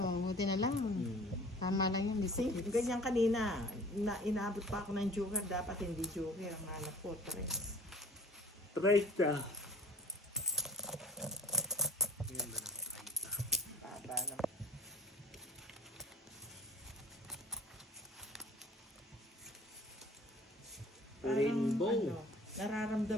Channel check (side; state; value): both; normal; correlation 0.47